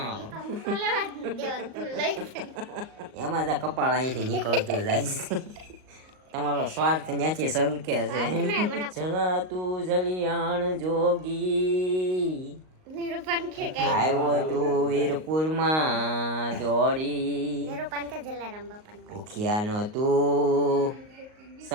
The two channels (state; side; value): late; left; 38 ms